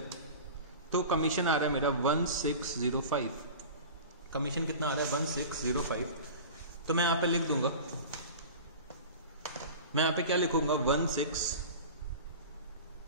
तो कमीशन आ रहा है मेरा 1605। कमीशन कितना आ रहा है? 1605। तो मैं यहां पे लिख दूंगा, मैं यहां पे क्या लिखूंगा?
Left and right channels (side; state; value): both; inverted; correlation -0.35